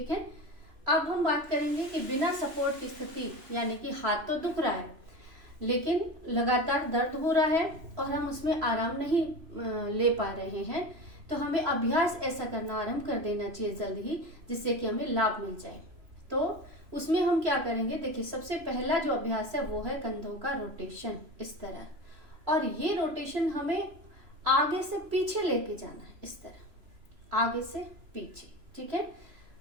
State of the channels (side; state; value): left; late; 3.0 ms